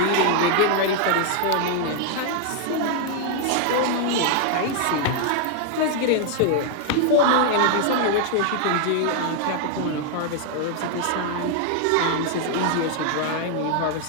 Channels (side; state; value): both; different; correlation 0.00